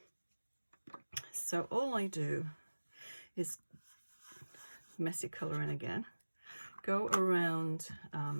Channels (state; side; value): inverted; both; correlation -1.00